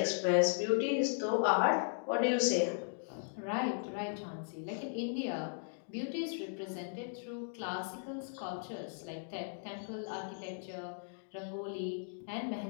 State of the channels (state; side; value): silent; right; digital silence